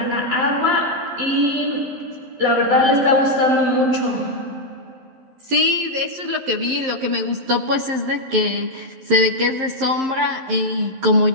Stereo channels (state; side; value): late; left; 11 ms